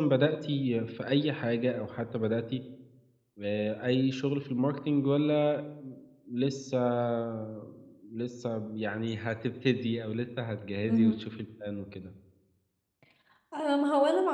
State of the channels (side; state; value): both; identical; correlation 1.00